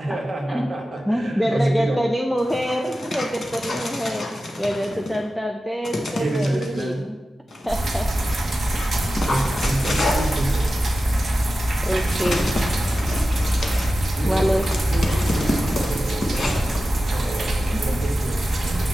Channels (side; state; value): both; normal; correlation 0.94